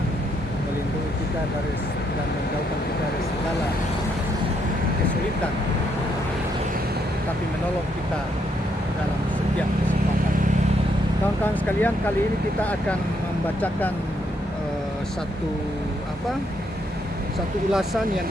melindungi kita dan menjauhkan kita dari segala kesulitan, tapi menolong kita dalam setiap kesempatan. Kawan-kawan sekalian, kali ini kita akan membacakan satu ulasan yang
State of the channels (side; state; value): both; normal; correlation 0.75